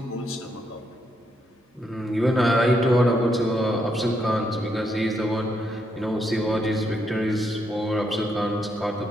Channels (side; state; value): both; normal; correlation 0.78